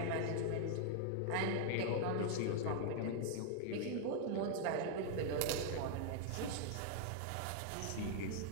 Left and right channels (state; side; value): different; both; correlation 0.00